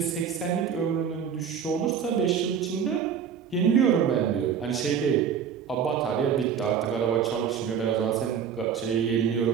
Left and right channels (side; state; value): left; quieter; 7.6 dB